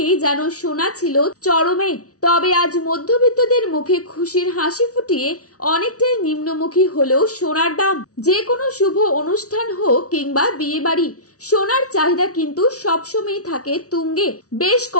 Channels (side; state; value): right; late; 0.67 ms